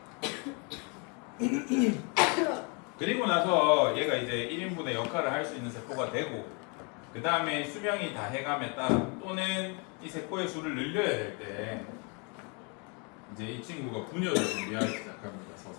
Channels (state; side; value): quieter; right; 34.0 dB